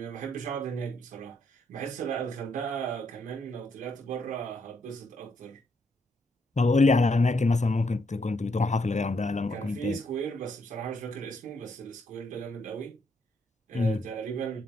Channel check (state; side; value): normal; both; correlation 0.74